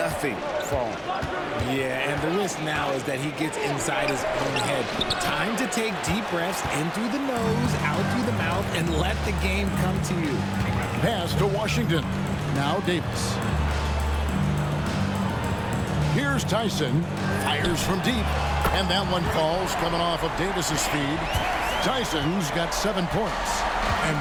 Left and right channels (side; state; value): both; identical; correlation 1.00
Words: falling. Yeah, and the risk now is that he gets inside his own head. Time to take deep breaths in through the nose, out through the mouth, and let the game come to you. Pass to Washington. Now Davis. Here's Tyson. Fires from deep. And that one falls coming off of Davis's feed. Tyson's got 7 points. And